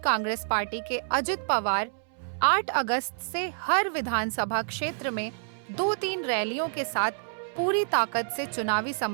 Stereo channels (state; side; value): silent; left; 59 dB below the other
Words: पार्टी के अजित पवार 8 अगस्त से हर विधानसभा क्षेत्र में 2-3 रैलियों के साथ पूरी ताकत से चुनावी